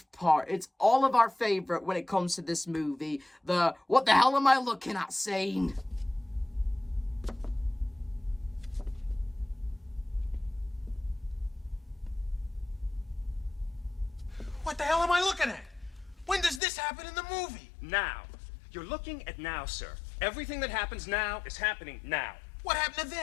part. It's all of our favorite when it comes to this movie. The what the hell am I looking at scene. What the hell am I looking at? When does this happen in the movie? Now. You're looking at now, sir. Everything that happens now is happening now. What happened to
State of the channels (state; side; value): drops out; right; at 16.6 s